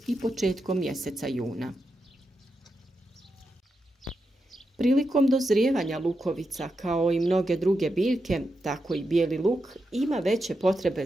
i početkom mjeseca juna. Prilikom dozrijevanja lukovica, kao i mnoge druge biljke, tako i bijeli luk, ima veće potrebe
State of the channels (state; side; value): normal; both; correlation 0.87